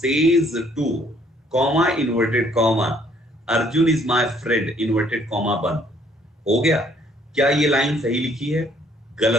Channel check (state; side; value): normal; both; correlation 0.63